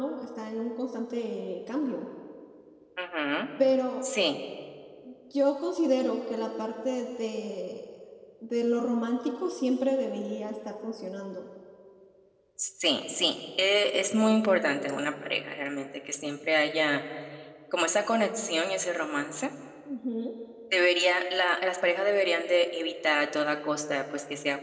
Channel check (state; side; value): identical; both; correlation 1.00